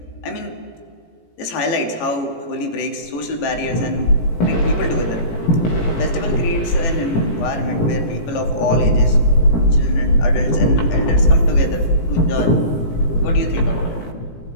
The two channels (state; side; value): late; right; 18 ms